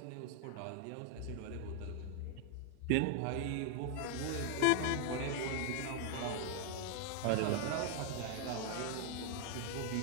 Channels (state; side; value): different; both; correlation 0.00